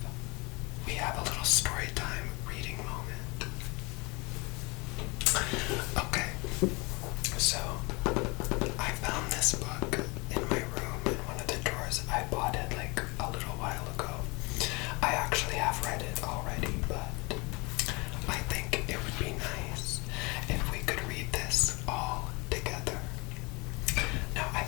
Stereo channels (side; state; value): right; quieter; 27.3 dB